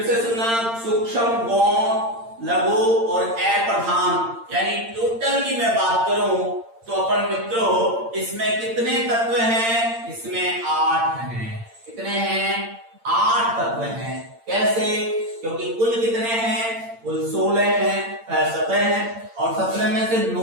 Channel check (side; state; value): left; late; 8.8 ms